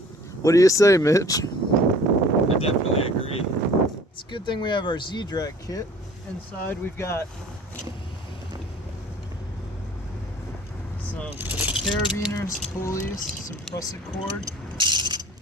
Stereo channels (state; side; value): normal; both; correlation 0.49